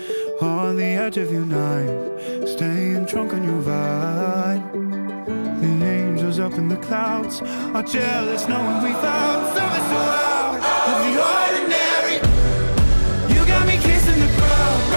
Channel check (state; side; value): inverted; both; correlation -1.00